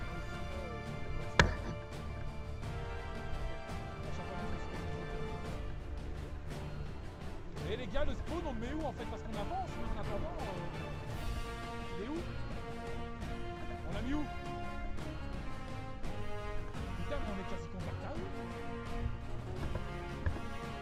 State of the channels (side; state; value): both; identical; correlation 1.00